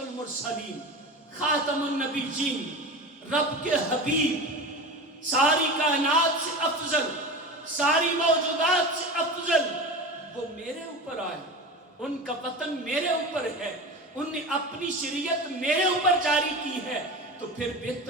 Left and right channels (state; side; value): normal; both; correlation 0.29